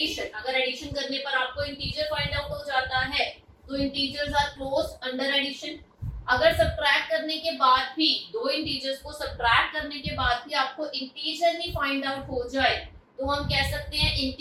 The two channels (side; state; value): both; identical; correlation 1.00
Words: अगर एडिशन करने पर आपको इंटीजर फाइंड आउट हो जाता है तो integers are closed under addition. अगर सब्ट्रैक्ट करने के बाद भी, दो इंटीजर्स को सब्ट्रैक्ट करने के बाद भी आपको इंटीजर ही फाइंड आउट हो जाए तो हम कह सकते हैं